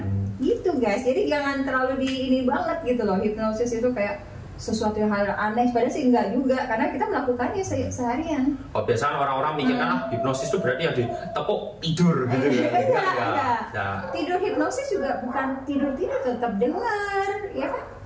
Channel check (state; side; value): identical; both; correlation 1.00